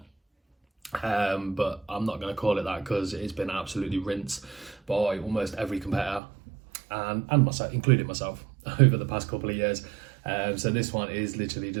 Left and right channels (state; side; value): drops out; left; at 6.2 s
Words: But I'm not going to call it that because it's been absolutely rinsed by almost every competitor and myself, including myself, over the past couple of years. So this one is literally